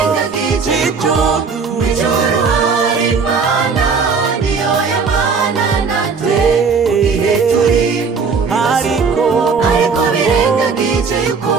yuko mw'ijuru hari Imana, niyo yabana natwe mu gihe turi mu bibazo. Ariko birengagije yuko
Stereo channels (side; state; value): left; quieter; 5.2 dB